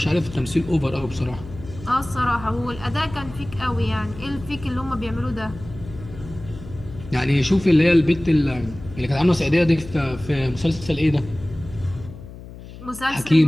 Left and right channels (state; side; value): noise; left; hum, 15 dB below the sound